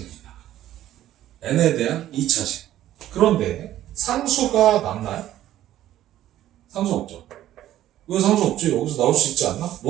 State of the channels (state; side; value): quieter; left; 13.1 dB